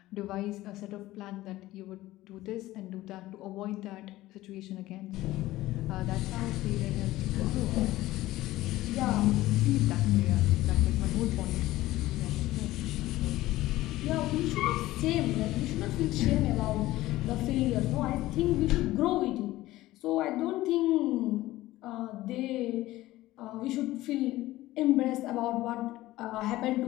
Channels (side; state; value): right; quieter; 16.7 dB